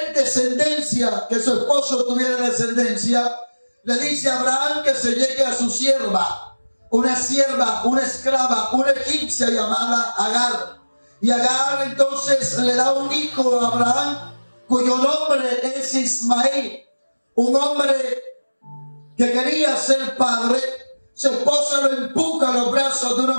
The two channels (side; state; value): both; inverted; correlation -1.00